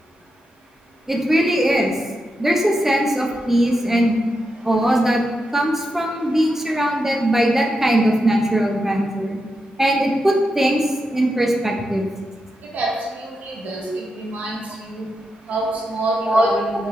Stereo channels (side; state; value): both; normal; correlation 0.86